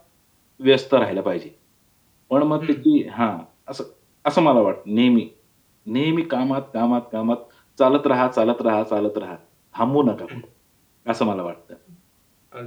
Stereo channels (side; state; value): both; identical; correlation 1.00